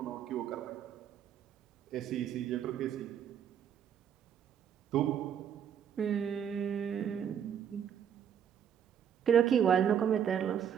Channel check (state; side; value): quieter; left; 8.7 dB